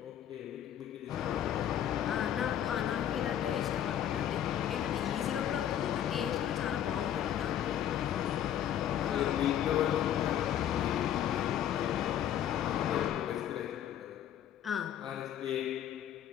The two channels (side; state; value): right; quieter; 10.5 dB